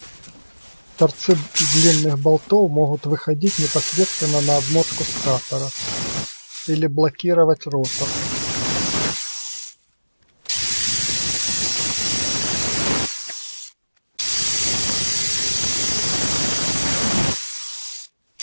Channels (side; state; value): both; inverted; correlation -1.00